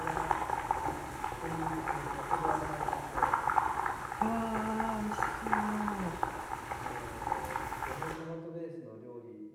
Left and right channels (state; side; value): identical; both; correlation 1.00